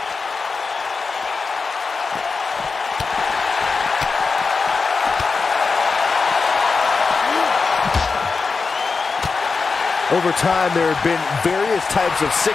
Over time, there have been various types of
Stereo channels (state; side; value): quieter; right; 4.6 dB